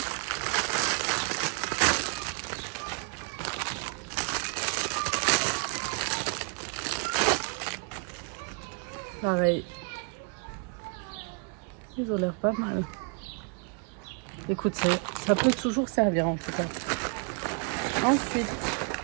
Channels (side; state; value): left; quieter; 36.3 dB